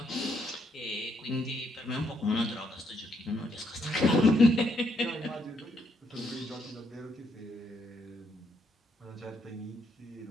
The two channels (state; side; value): normal; both; correlation 0.74